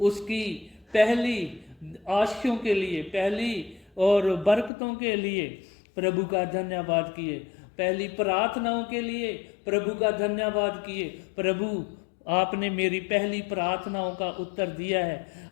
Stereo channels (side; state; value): right; drops out; at 4.7 s